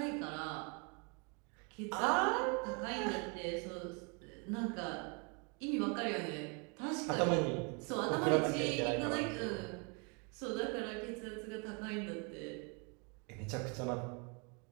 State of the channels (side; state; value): left; quieter; 33.7 dB